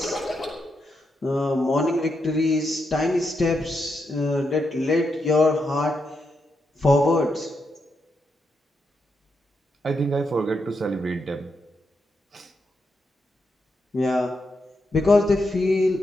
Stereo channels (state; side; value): normal; both; correlation 0.83